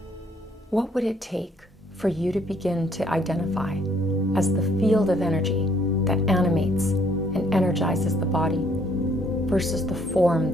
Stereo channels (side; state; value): both; normal; correlation 0.65